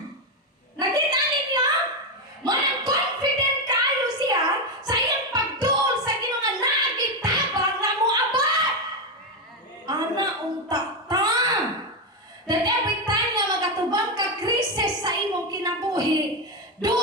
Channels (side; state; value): both; normal; correlation 0.08